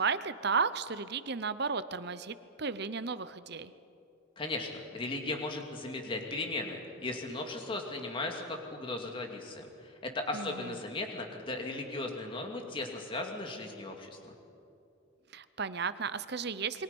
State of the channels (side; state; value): both; normal; correlation -0.05